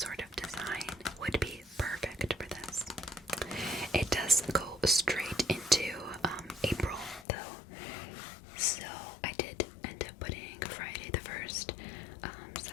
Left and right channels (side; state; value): right; drops out; at 7.2 s